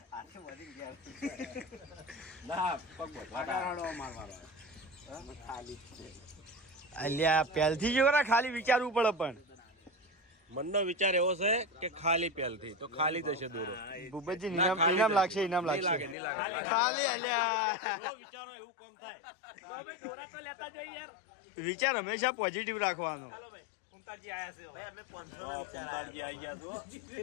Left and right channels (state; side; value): drops out; right; at 16.2 s